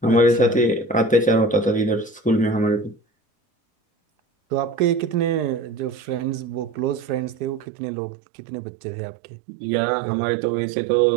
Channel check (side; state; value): left; drops out; at 7.7 s